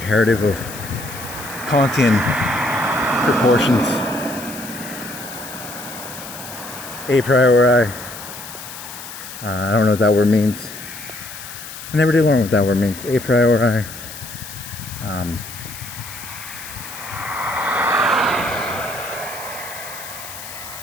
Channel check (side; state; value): left; noise; hiss, 12 dB below the sound